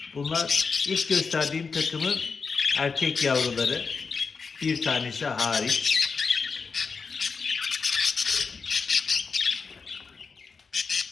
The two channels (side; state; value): right; quieter; 5.1 dB